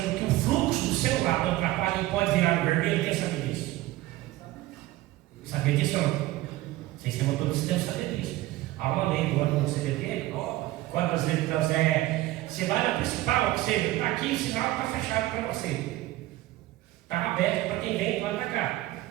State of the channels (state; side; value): quieter; left; 16.9 dB